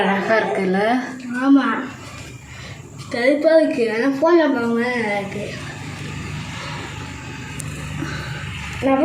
அழகாக இருக்குல்ல? ஆமாம், கருப்பாக இருக்கு. ஆனால் ஃபோனில் பாருங்க இருக்கு.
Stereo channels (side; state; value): both; identical; correlation 1.00